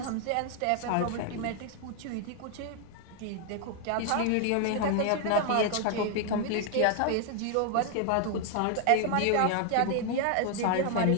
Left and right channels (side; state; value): both; different; correlation 0.00